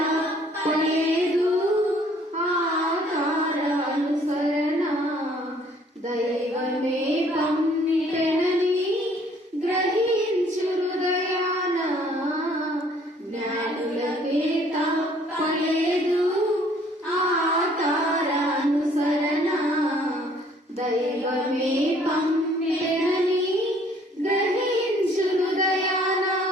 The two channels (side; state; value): both; normal; correlation 0.60